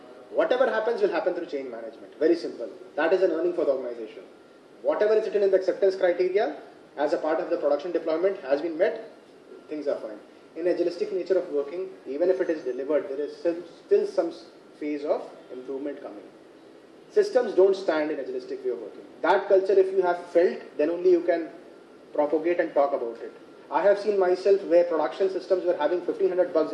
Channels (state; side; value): identical; both; correlation 1.00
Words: Whatever happens will happen through change management. Very simple. That is an earning for the organization. Whatever is written in the acceptance criteria as a part of the production deployment has been met, things are fine. In agilistic nature of working, even if it is delivered, there is still some phase of improvement coming. Systems don't stand in agilistic way of working. That culture, if you have felt, then only you can propagate and talk about it. I have seen myself where production systems were having 1500 bugs